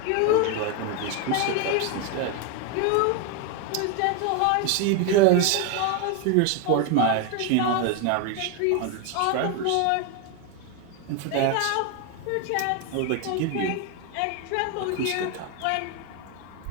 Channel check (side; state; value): both; different; correlation 0.02